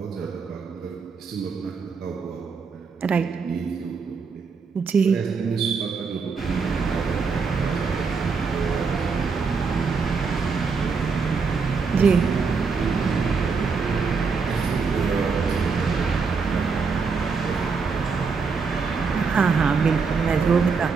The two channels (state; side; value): quieter; left; 5.1 dB